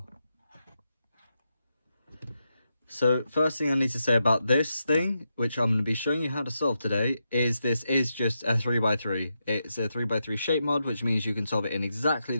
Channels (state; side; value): inverted; both; correlation -0.86